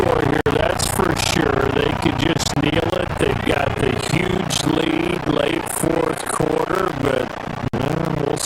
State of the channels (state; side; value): identical; both; correlation 1.00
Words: here, that's for sure. They could just kneel it. They've got the huge lead late fourth quarter, but we'll